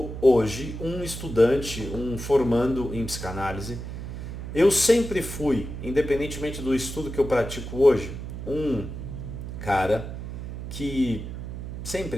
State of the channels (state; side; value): noise; right; hum, 8 dB below the sound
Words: hoje um estudante, um formando em psicanálise. Eu sempre fui, independentemente do estudo que eu pratico hoje, um cara que,